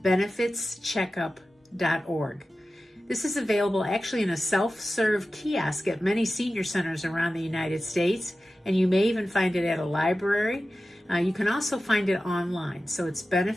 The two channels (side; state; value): both; normal; correlation 0.94